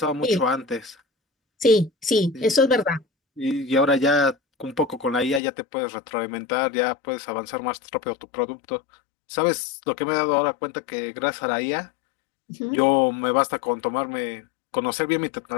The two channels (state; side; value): drops out; right; at 5.4 s